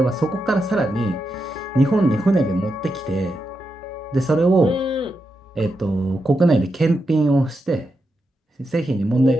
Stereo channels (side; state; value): both; normal; correlation 0.86